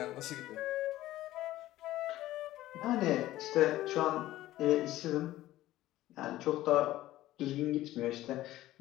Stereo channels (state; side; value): quieter; right; 15.3 dB